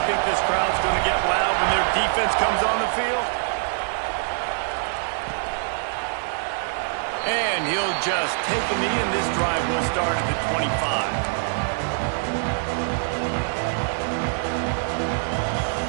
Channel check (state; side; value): silent; left; digital silence